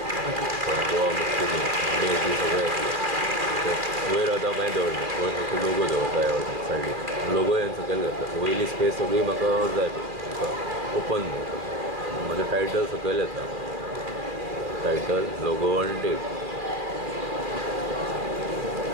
गोवा मुस्लिम डे बी सगळें आसलें. वयर आतां कांय दवरना, वयर फक्त लोगो दवरता ह्या सायडीक. लोगो हांवें सकयल घातला. वयली स्पेस सगळी म्हाका जाय ओपन म्हजें टायटल सकयल येता. टायटल लोगो आनी डेट.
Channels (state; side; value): late; left; 2.4 ms